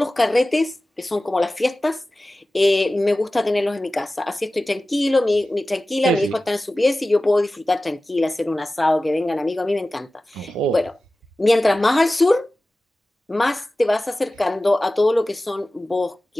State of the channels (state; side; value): normal; both; correlation 0.96